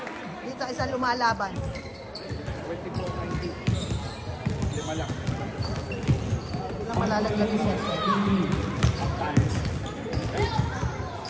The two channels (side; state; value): both; identical; correlation 1.00